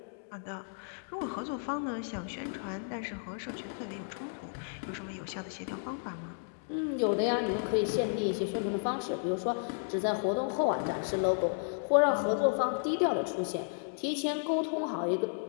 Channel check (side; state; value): right; silent; digital silence